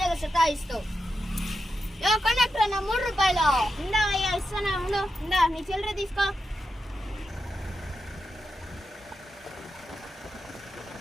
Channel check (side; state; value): both; normal; correlation 0.88